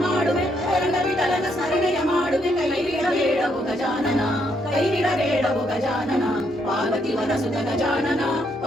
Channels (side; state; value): both; normal; correlation 0.74